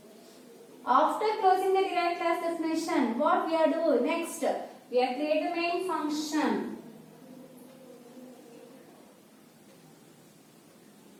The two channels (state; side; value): identical; both; correlation 1.00